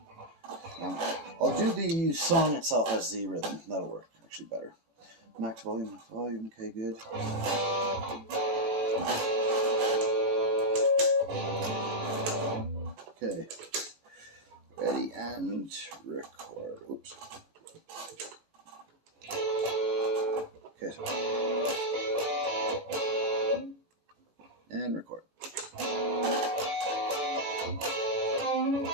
I'll do the song itself as the rhythm. That'll work actually better. Max volume, okay, good. Okay, ready and record. Oops. Okay, and record.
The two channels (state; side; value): late; left; 14 ms